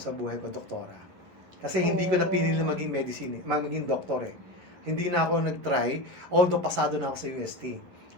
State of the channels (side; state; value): left; late; 11 ms